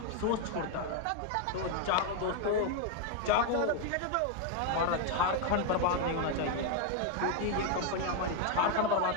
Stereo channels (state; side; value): different; both; correlation 0.01